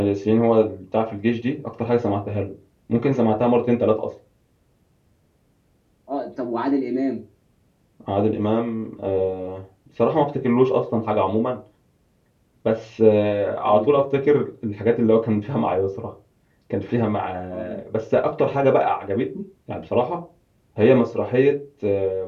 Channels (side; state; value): both; identical; correlation 1.00